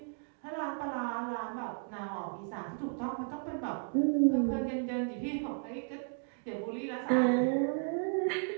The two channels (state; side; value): silent; left; 55 dB below the other